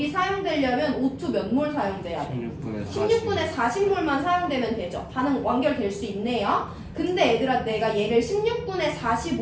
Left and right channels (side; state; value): both; identical; correlation 1.00